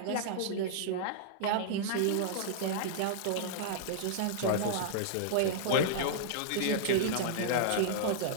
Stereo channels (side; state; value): both; different; correlation -0.01